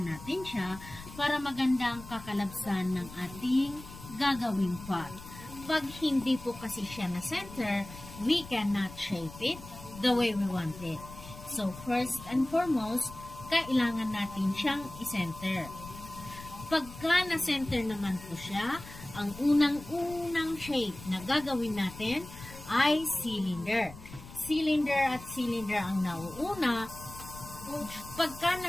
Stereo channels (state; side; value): noise; left; rumble, 16 dB below the sound